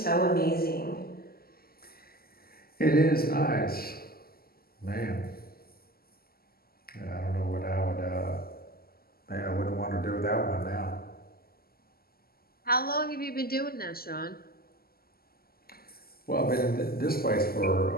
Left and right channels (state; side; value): late; right; 0.44 ms